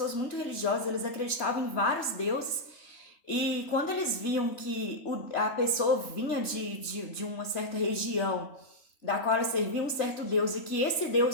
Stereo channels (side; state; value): right; late; 3.3 ms